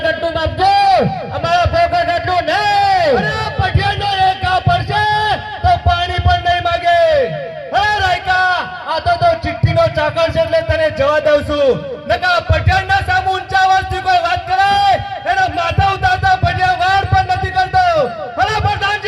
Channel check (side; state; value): both; identical; correlation 1.00